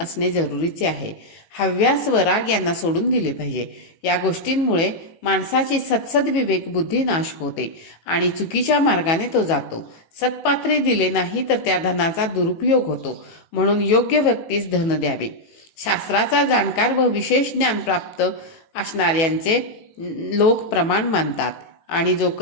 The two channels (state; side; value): late; right; 18 ms